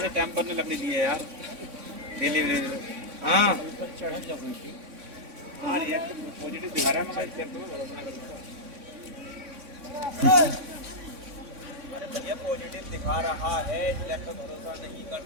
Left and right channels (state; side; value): late; left; 3.6 ms